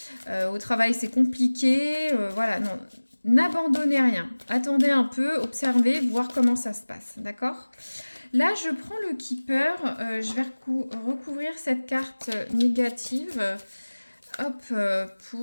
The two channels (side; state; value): both; inverted; correlation -1.00